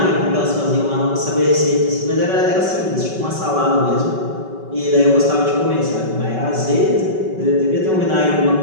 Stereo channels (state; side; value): late; left; 5.3 ms